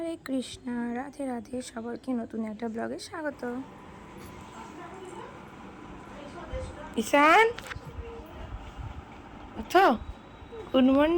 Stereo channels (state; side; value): identical; both; correlation 1.00